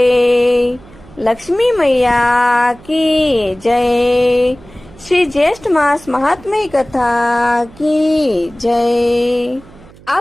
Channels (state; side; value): noise; right; hum, 23 dB below the sound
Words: लक्ष्मी मैया की जय, श्री ज्येष्ठ मास महात्म्य कथा की जय।